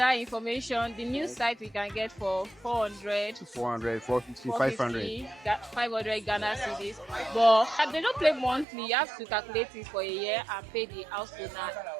information. The new site we can get for 400, 400, 450, 500. 500 Ghana cedis. But they don't pay monthly. You have to calculate it for a year and pay the house owner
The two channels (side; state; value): left; drops out; at 8.7 s